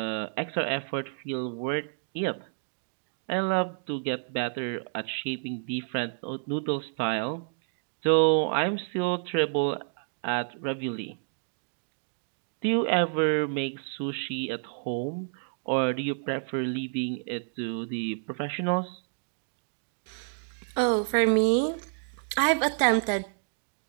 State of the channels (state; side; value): silent; left; digital silence